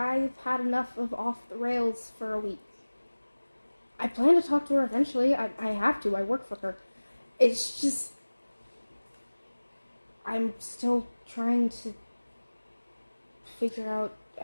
had enough of off the rails for a week. I plan to talk to her eventually. I have to. I work for her. It's just, I'm still trying to figure out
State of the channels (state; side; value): inverted; both; correlation -1.00